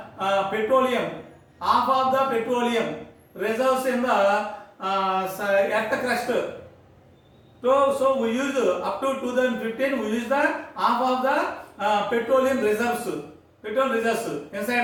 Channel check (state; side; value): identical; both; correlation 1.00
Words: petroleum, half of the petroleum reserves in the earth crust. So we use up to 2015, we use the half of the petroleum reserves, petrol reserves inside